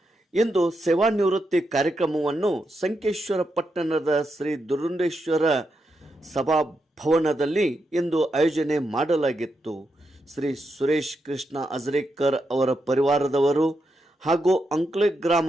ಇಂದು ಸೇವಾ ನಿವೃತ್ತಿ ಕಾರ್ಯಕ್ರಮವನ್ನು ಸಂಕೇಶ್ವರ ಪಟ್ಟಣದ ಶ್ರೀ ದುರುಂಡೇಶ್ವರ ಸಭಾಭವನದಲ್ಲಿ ಇಂದು ಆಯೋಜನೆ ಮಾಡಲಾಗಿತ್ತು. ಶ್ರೀ ಸುರೇಶ್ ಕೃಷ್ಣ ಅಜರೇಕರ್ ಅವರ ಪರಿವಾರದವರು ಹಾಗೂ ಅಂಕ್ಲೆ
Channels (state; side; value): normal; both; correlation 0.84